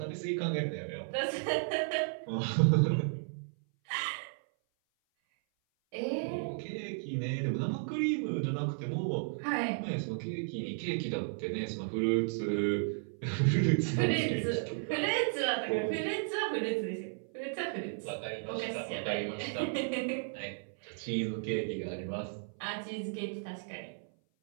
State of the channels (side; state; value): left; silent; 55 dB below the other